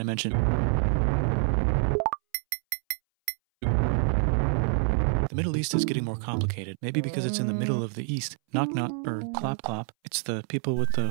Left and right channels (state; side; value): silent; left; 60 dB below the other